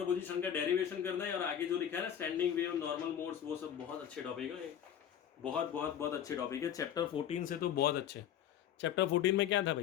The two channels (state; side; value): quieter; right; 9.7 dB